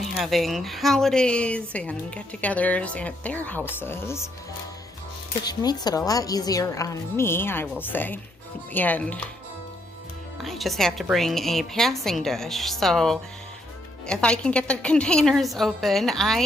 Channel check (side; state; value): both; normal; correlation 0.74